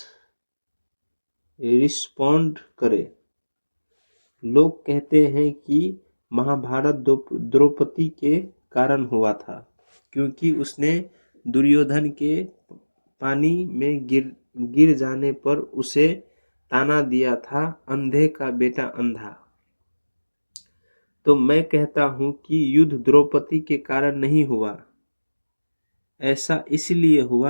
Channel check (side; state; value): both; inverted; correlation -1.00